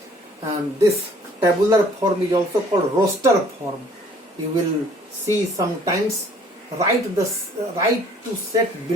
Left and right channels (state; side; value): normal; both; correlation 0.56